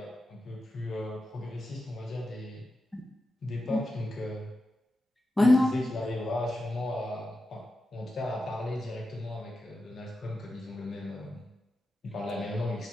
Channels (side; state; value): both; normal; correlation 0.90